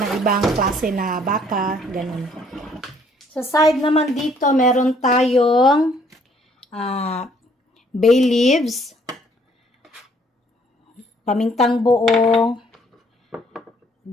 ibang klase na baka, ganun. Sa side naman dito, meron tayong bay leaves, pamintang buo,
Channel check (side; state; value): both; normal; correlation 0.63